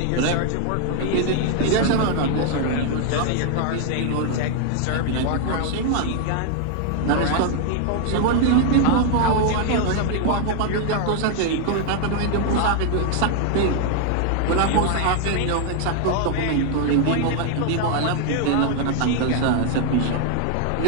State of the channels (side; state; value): both; different; correlation 0.00